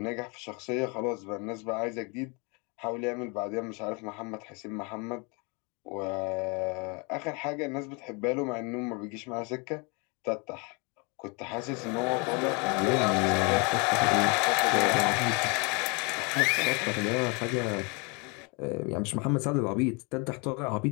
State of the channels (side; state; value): right; quieter; 31.2 dB